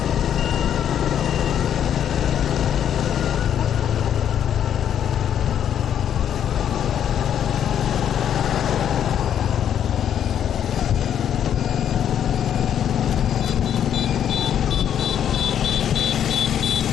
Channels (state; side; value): quieter; right; 9.5 dB